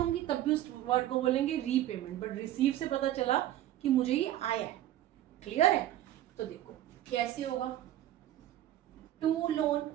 तब भी उस वर्ड को बोलेंगे रीपेमेंट, बट रिसीव से पता चला कि मुझे ये आया है। क्लियर है? तो देखो कैसे होगा? टू लोन,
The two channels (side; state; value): left; quieter; 13.2 dB